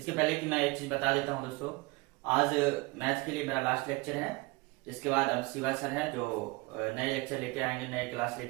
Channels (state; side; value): quieter; left; 24.7 dB